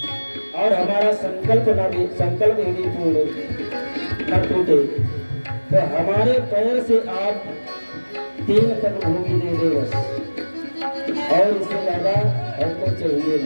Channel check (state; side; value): inverted; both; correlation -1.00